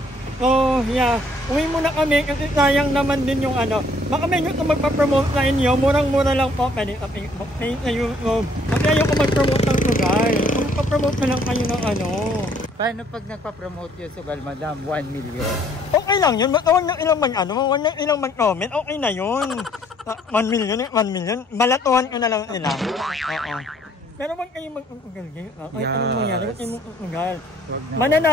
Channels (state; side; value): normal; both; correlation 0.62